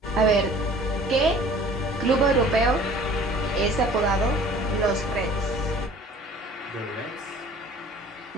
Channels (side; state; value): both; normal; correlation 0.49